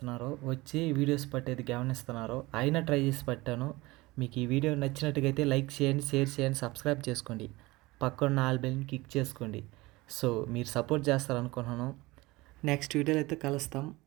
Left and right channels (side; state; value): left; quieter; 21.3 dB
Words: వచ్చి వీడియోస్ పట్టేది గమనిస్తున్నారు. అయినా ట్రై చేసి పట్టాను. మీకు ఈ వీడియో నచ్చినట్టుగా అయితే లైక్ చేయండి, షేర్ చేయండి, సబ్స్క్రైబ్ చేసుకోండి, పక్కన ఆల్ బెల్ని క్లిక్ చేసుకోండి. సో మీరు సపోర్ట్ చేస్తారనుకున్నాను. నెక్స్ట్ వీడియోలో అయితే కలుస్తాం.